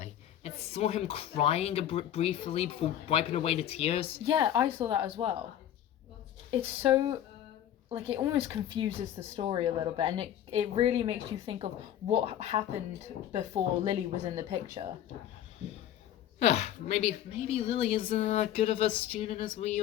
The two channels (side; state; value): right; quieter; 11.2 dB